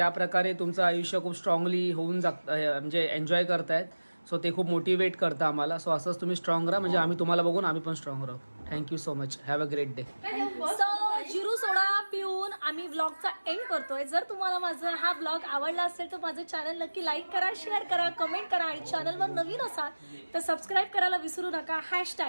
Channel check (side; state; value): both; inverted; correlation -1.00